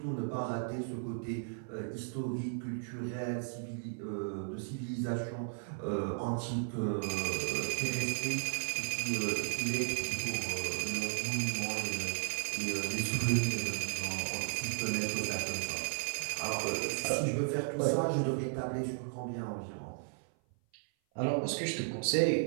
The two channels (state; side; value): silent; left; 54 dB below the other